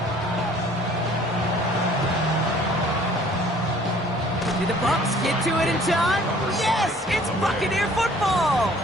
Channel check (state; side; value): normal; both; correlation 0.54